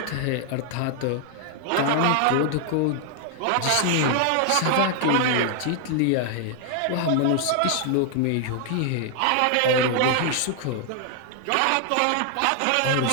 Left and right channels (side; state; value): both; different; correlation 0.00